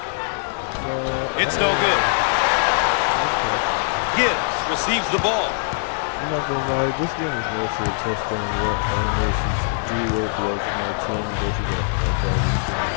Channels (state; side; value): silent; right; 64 dB below the other